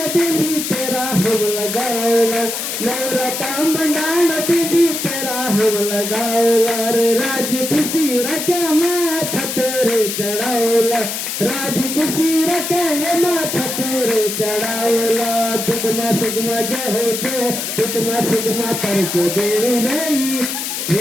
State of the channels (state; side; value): noise; left; hiss, 4 dB below the sound